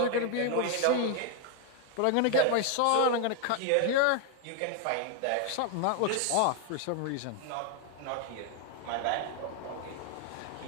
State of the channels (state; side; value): different; both; correlation 0.01